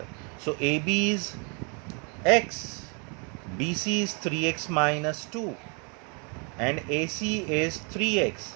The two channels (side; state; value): left; quieter; 35.5 dB